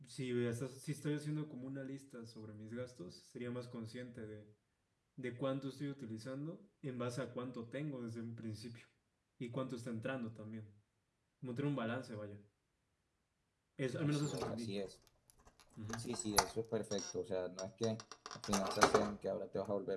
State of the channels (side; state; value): both; identical; correlation 1.00